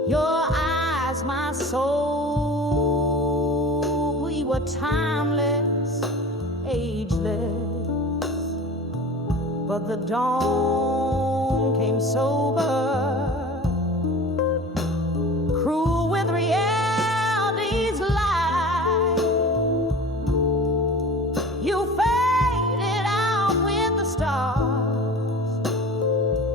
Your eyes, my soul, we were timeless, ageless, but the dawn came sober, cruel with reality's lie. You faded out with the stars,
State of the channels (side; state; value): both; normal; correlation 0.37